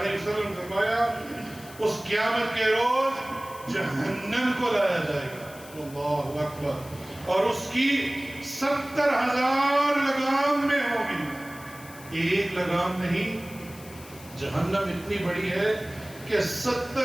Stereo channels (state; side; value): noise; left; hiss, 19 dB below the sound